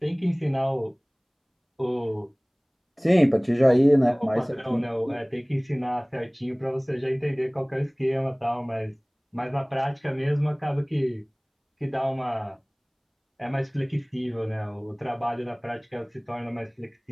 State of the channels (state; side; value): identical; both; correlation 1.00